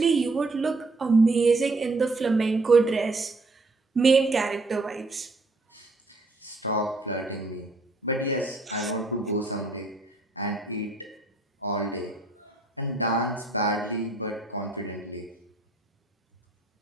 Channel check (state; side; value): quieter; left; 3.0 dB